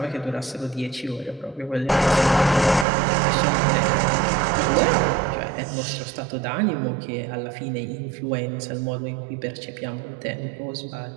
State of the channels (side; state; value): left; drops out; at 2.9 s